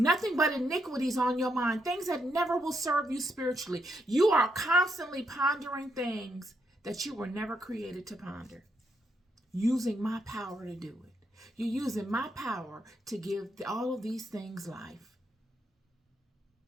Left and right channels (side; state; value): both; normal; correlation 0.78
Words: but iniquities on your mind, things that never will serve you spiritually. You are constantly pondering things that you were never created to ponder, using my power to do it. You're using my power to give all of these things life.